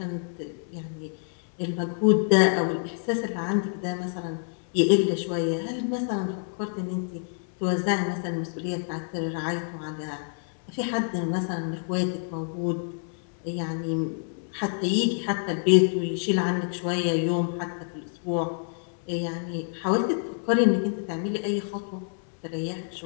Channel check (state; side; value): silent; right; digital silence